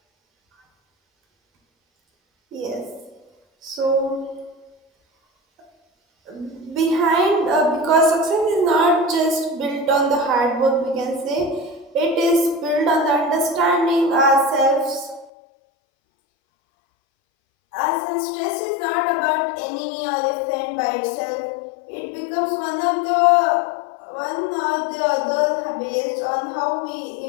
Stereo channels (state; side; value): drops out; right; at 15.3 s